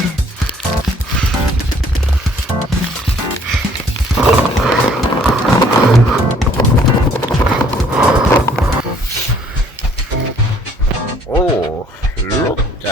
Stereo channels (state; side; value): normal; both; correlation 0.60